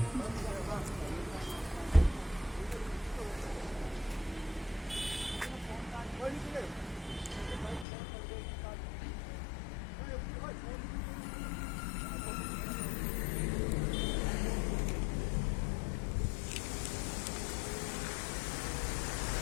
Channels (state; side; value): drops out; right; at 7.9 s